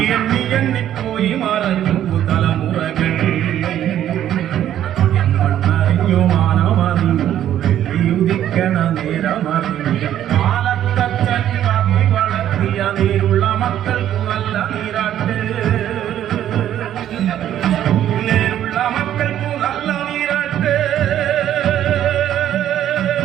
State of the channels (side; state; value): left; quieter; 11.3 dB